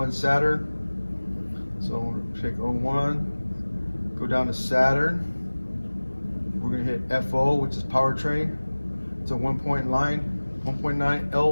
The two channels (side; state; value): both; inverted; correlation -1.00